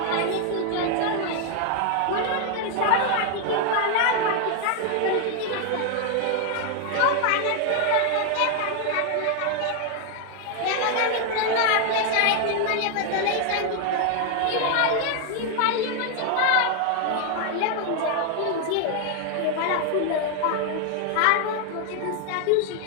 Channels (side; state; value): both; different; correlation 0.00